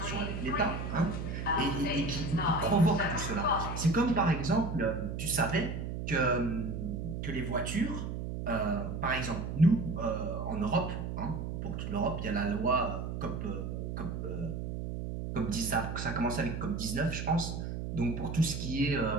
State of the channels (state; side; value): noise; right; hum, 4 dB below the sound